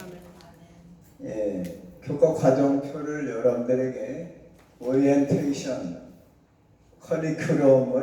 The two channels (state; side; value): identical; both; correlation 1.00